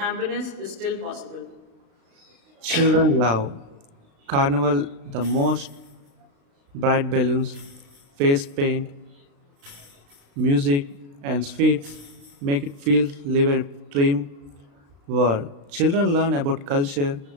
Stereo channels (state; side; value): late; left; 36 ms